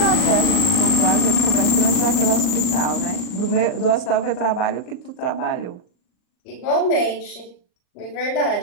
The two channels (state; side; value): late; right; 39 ms